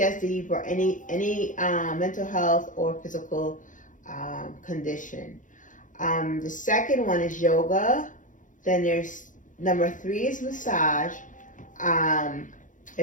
but any mental health or physical condition. The second one is yoga. Then there's number 3 is massage.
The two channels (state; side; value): late; right; 0.37 ms